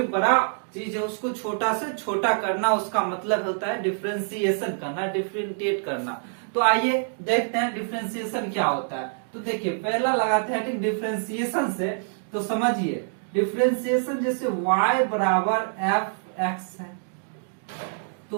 बड़ा चीज है उसको छोटा से छोटा करना, उसका मतलब होता है डिफरेंशिएशन करना, डिफरेंशिएट करना। तो आइए देखते हैं डिफरेंशिएशन क्या होता है। तो देखिए पहला लगाते हैं कि डिफरेंशिएशन से, तो समझिए डिफरेंशिएशन जैसे y बराबर एफ एक्स है, तो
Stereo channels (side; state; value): left; silent; digital silence